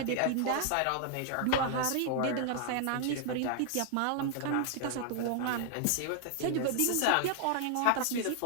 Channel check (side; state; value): both; different; correlation 0.00